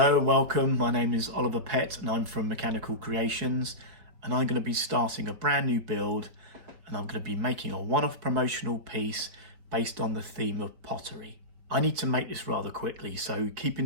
welcome. My name is Oliver Pett and I'm from Mechanical Creations, and I'm going to be starting a brand new build, and I'm going to be making a one-off promotional piece based on the theme of pottery. I need to make this rather quickly, so keeping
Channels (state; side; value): late; left; 4.6 ms